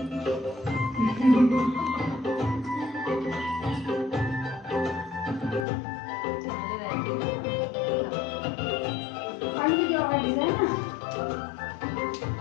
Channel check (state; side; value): drops out; right; at 5.7 s